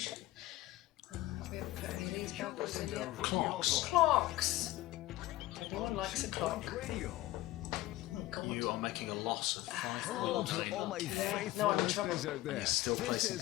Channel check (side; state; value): right; quieter; 16.7 dB